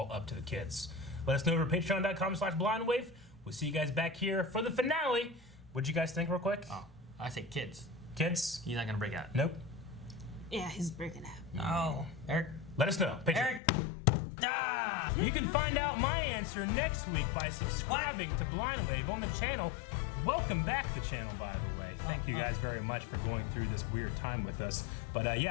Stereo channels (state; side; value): drops out; right; at 13.6 s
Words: up to the kids. Let us know over patreon.com/blindwave. We'll see you guys back here for the finale. What'd you guys think real quick? Oh, I say kids. Kids? He's not going to break out. Nope. Yeah, he's breaking out. No. Eric? Let us know. Patreon. Eric? Ah! You can find out my answer next week by subscribing to Blindwave on the channel. Welcome back to the channel, by the way. Thank you guys very much for going through this weird time with us. But